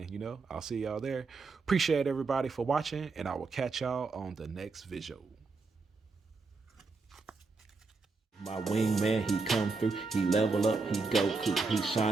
I'll see y'all there. Appreciate everybody for watching, and I will catch y'all on the next video. My wingman, he come through, he level up, he go cool, he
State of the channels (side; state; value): left; quieter; 4.1 dB